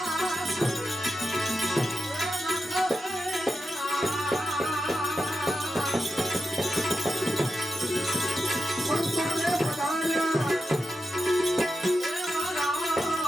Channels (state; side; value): normal; both; correlation 0.89